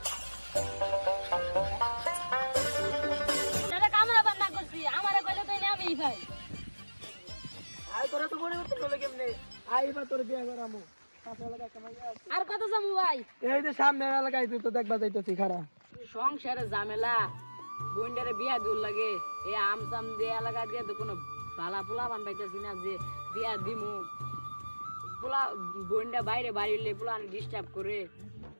দাদা কামড়াবার না করছি আমারে কইলে তো আমি ভাই আই তোরা তো পরিবর্তন হলো কেমনে, আইবা তোর বিয়া করামু। পাশে এলাকায় একটা মাইয়া আছে। আর কত যামু ভাই এই যে সামনে এলাকায় তুই তো দেখবা যাইতেছি খারা। সংসারে ঝামেলা বন্ডারে বিয়া দূর লাগে এই আমসাম দিয়ে এলাকা দিয়ে তো কোনো ভালা পোলা বান পাইতেছি না যে বিয়া দিমু পোলা বন্ডা বাইরে বাড়িলে পোলা ডিস্টার্ব করে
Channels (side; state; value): both; inverted; correlation -1.00